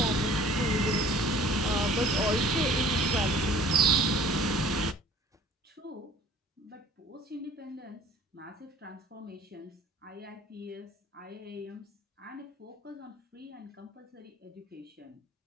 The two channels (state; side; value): normal; both; correlation 0.49